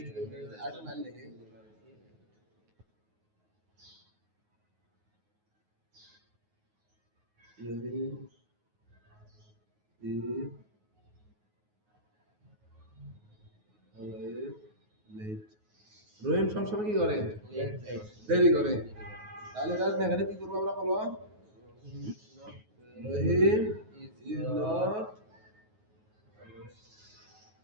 আরেকটা line লিখি। Rahim is always late। রহিম সবসময় কি করে? দেরি করে। তাহলে এটা নেগেটিভ কি করবো আমরা বলো? রহিম is not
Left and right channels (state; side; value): late; left; 9.4 ms